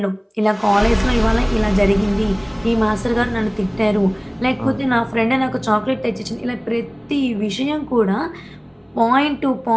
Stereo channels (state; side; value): identical; both; correlation 1.00